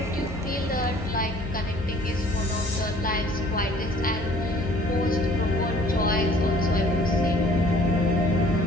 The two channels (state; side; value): normal; both; correlation 0.54